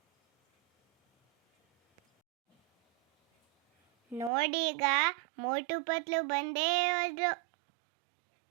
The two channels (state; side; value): drops out; left; at 4.3 s